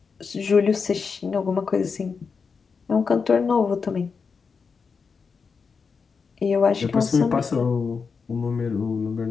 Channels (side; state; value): right; quieter; 5.4 dB